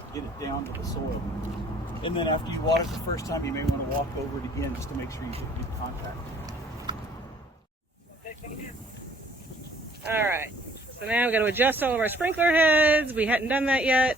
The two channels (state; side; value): normal; both; correlation 0.58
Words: it down to the soil. And then after you water it the first time, you may want to walk over it again just to make sure you get good contact. All right. So now we've got to adjust all of our sprinkler heads. We hadn't done that yet.